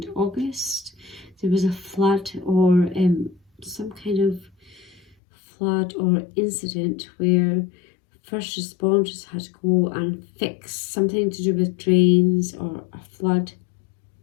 August, there was a flood or some kind of flood or incident where first responders had to go and fix something to do with drains or a flood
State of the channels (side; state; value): right; drops out; at 5.2 s